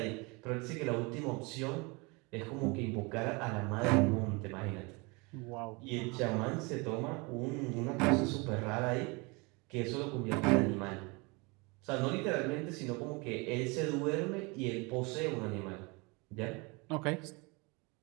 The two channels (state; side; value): quieter; left; 28.0 dB